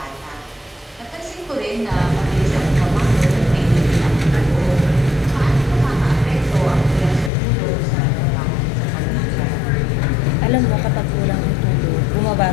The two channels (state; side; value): drops out; right; at 7.3 s